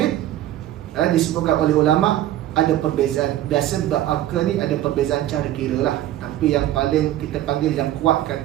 disebutkan oleh ulama ada perbezaan. Biasa berakal ni ada perbezaan cara kira lah. Tapi yang paling kita panggil yang kuat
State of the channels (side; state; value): left; quieter; 13.4 dB